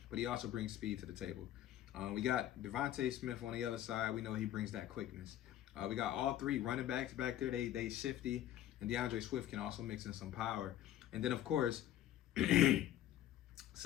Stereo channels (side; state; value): right; quieter; 12.5 dB